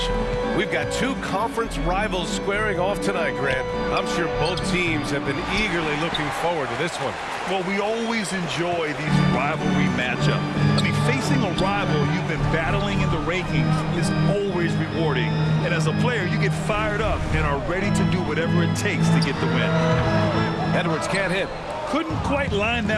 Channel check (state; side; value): identical; both; correlation 1.00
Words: We've got two conference rivals squaring off tonight, Grant. I'm sure both teams have been eagerly looking forward to this one. Well, we always enjoy these rivalry matchups. I mean, facing a rival you've been battling in the rankings is always rewarding. And as a player, you get fired up and are ready to do whatever it takes to get the win. Edwards can't hit. Couldn't quite line